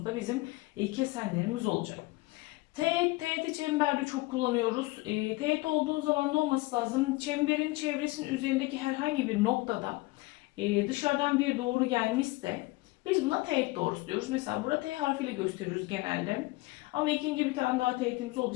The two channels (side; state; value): right; quieter; 22.1 dB